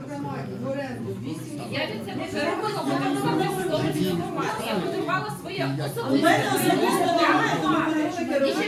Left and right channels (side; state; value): both; identical; correlation 1.00